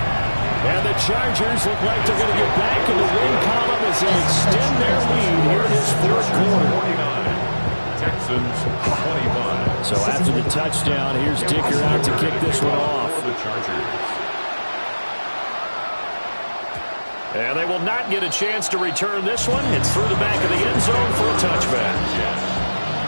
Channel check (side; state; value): both; inverted; correlation -1.00